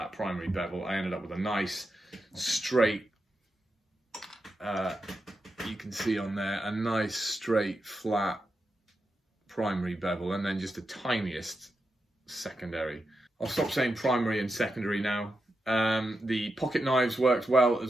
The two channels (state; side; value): normal; both; correlation 0.87